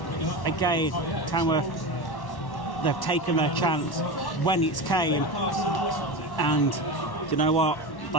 again, Tamworth, they've taken their chance when it's came. And you know what?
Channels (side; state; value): right; late; 1.1 ms